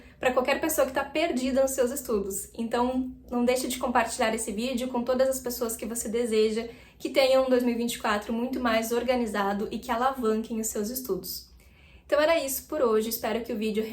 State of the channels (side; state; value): both; identical; correlation 1.00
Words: para qualquer pessoa que está perdida nos seus estudos. Então não deixe de compartilhar esse vídeo com todas as pessoas que você deseja que tenham um 2024 muito mais organizado e que alavanquem os seus estudos. Então era isso por hoje, espero que o vídeo